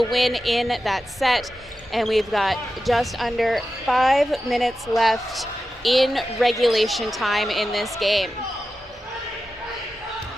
win in that set. and we've got just under 5 minutes left in regulation time in this game.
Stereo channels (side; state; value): both; normal; correlation 0.92